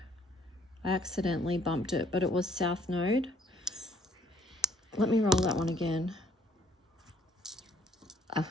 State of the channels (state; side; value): normal; both; correlation 0.63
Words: I accidentally bumped it, but it was South Node. Let me roll that one again.